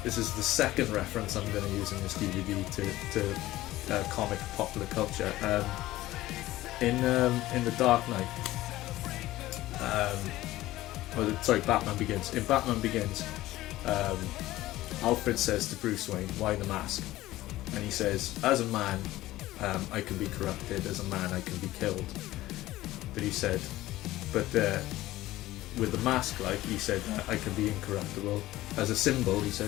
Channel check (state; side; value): quieter; right; 16.4 dB